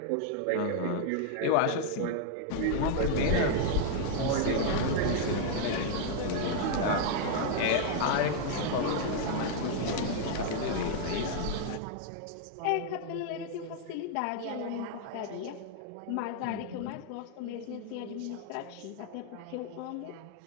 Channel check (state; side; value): different; both; correlation 0.00